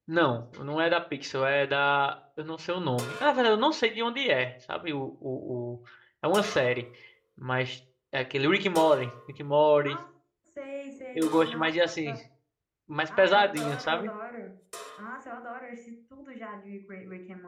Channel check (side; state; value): both; identical; correlation 1.00